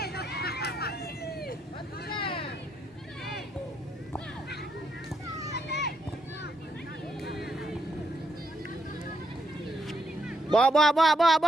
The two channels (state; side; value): normal; both; correlation 0.78